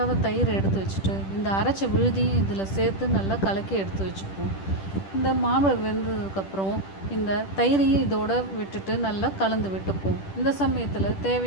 தயிரை எடுத்து வச்சுட்டு இந்த அரைச்ச விழுதியும் இதில் சேர்த்து நல்லா கலக்கி எடுத்து வச்சுப்போம். இந்த மாம்பழம் வெந்ததுக்கப்புறம் இந்த தயிரையும் இதோடு விட்டுட்டு நல்லா கலந்து விட்டுப்போம். இந்த சமயத்தில்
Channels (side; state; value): right; late; 10 ms